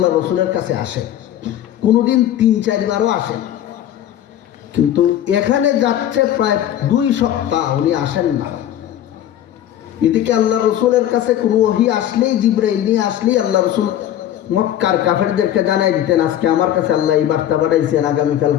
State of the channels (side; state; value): right; quieter; 11.5 dB